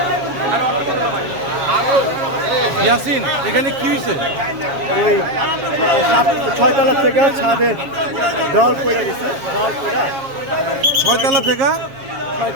ইয়াসিন, এখানে কি হয়েছে? ওই 6 তলা থেকে ছাদের দেওয়াল পড়ে গেছে। দেওয়াল পড়া 6 তলা থেকে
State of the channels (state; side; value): late; left; 7.3 ms